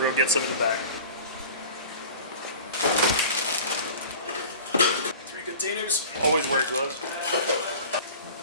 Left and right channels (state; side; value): inverted; both; correlation -0.40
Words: gonna get some in the back. 3 containers. Always wear gloves.